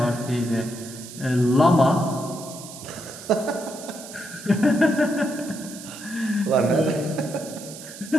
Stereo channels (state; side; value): noise; right; hiss, 14 dB below the sound